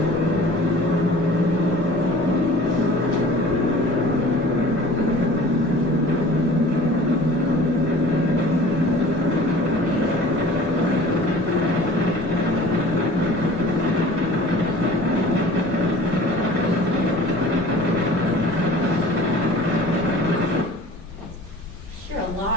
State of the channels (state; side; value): normal; both; correlation 0.45